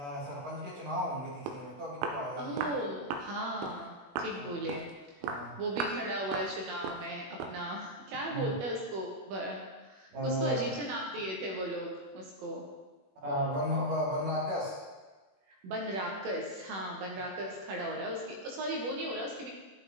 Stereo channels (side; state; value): left; late; 21 ms